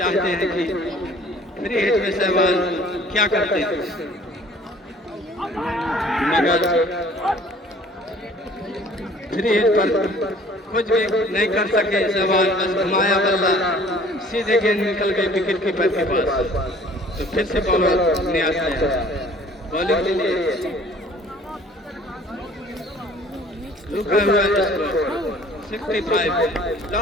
हैं कि फ्री हिट में सहवाल क्या करते हैं, मगर फ्री हिट पर कुछ भी नहीं कर सके सहवाल। बस घुमाया बल्ला सीधे गेंद निकल गई विकेट कीपर के पास। तो फिर से बॉलर न्याज है बॉलिंग के लिए रुका हुआ स्कोर 65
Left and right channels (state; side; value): normal; both; correlation 0.52